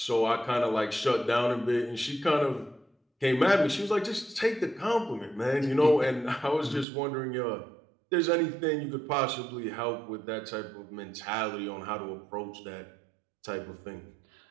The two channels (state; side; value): drops out; left; at 6.9 s